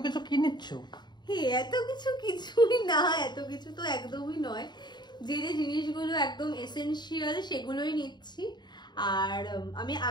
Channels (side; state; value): right; late; 0.21 ms